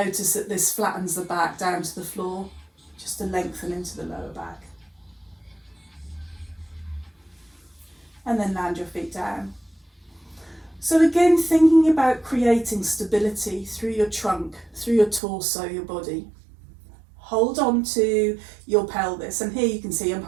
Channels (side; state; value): left; drops out; at 15.2 s